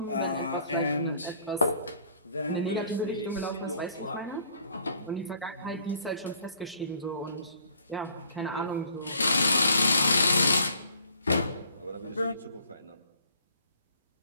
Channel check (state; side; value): inverted; both; correlation -0.59